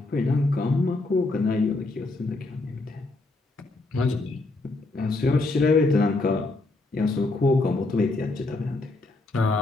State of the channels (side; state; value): right; quieter; 3.1 dB